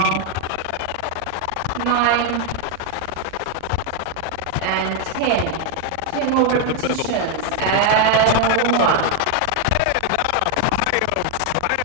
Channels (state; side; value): different; both; correlation 0.00